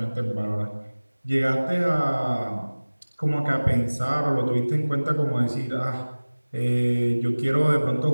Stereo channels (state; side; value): inverted; both; correlation -1.00